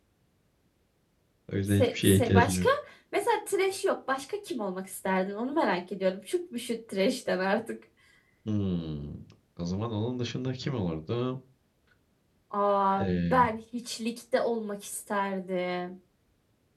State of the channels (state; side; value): identical; both; correlation 1.00